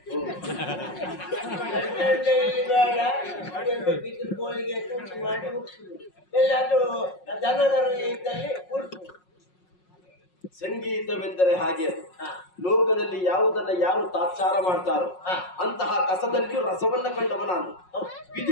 ಬೆಟ್ಲಂಡೆ ಬೇಡ, ಅದನ್ನು ಬಿದಿರು ಕೋಳಿಗೆ ತುಂಡು ಮಾಡಿ ಮುಗಿಸುದು. ಎಲ್ಲಾದ್ರೂ ದನದರ ಇದ್ದಲ್ಲಿ ಉರ್ಸು. ಸಂಗೀತವೆಂದರೆ ಹಾಗೆ ಅದು. ಲೋಕದಲ್ಲಿ ಯಾವುದನ್ನ ಯಾರು ತಾತ್ಸಾರ ಮಾಡ್ತಾರೋ ಅಂತಹ ಕಸದಲ್ಲಿಯೂ ರಸವನ್ನ ಕಂಡವ ನಾನು.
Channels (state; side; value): late; right; 5.5 ms